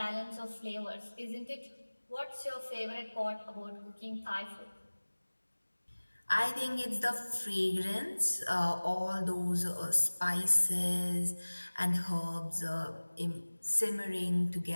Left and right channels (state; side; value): inverted; both; correlation -1.00